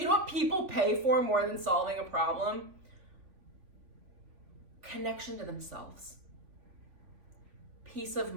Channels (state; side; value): late; left; 3.6 ms